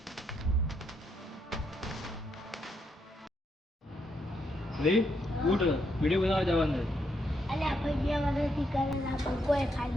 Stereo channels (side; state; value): both; normal; correlation 0.77